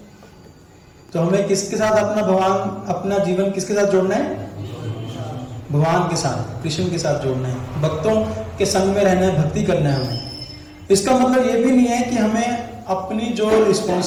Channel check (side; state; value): both; identical; correlation 1.00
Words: तो हमें किसके साथ अपना भगवान, अपना जीवन किसके साथ जोड़ना है? भगवान के साथ, कृष्ण के साथ जोड़ना है, भक्तों के संग में रहना है, भक्ति करना है हमें। इसका मतलब ये भी नहीं है कि हमें अपनी जो